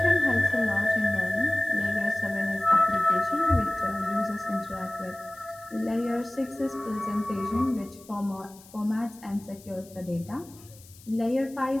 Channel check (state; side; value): noise; left; hiss, 23 dB below the sound